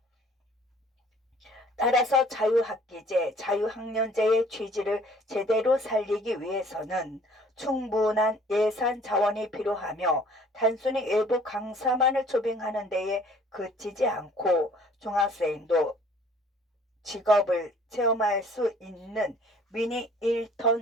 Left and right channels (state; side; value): normal; both; correlation 0.55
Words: 따라서 자유학기제, 자유학년제의 취지를 제대로 살리기 위해서는 충분한 예산 자원이 필요하며 단순히 일부 강사만을 초빙하는 데에 그치지 않고 중학생도 직업을 체험할 수 있는 미니